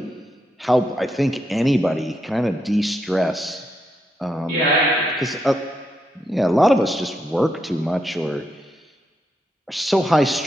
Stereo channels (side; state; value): both; normal; correlation 0.81